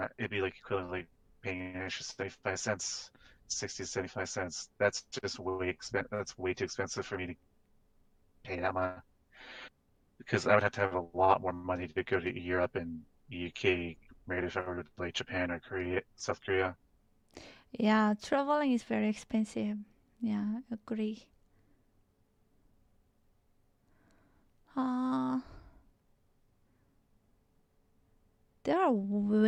It'd be like equivalent like paying an extra 75 cents, 60 to 75 cents. That's just That's way too expensive for me to pay that much. Because I would have to have a lot more money to go to Europe and UK, compared if I were to like Japan or Korea, South Korea. Yeah, traveling is very expensive. Yeah, agree. There are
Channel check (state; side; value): identical; both; correlation 1.00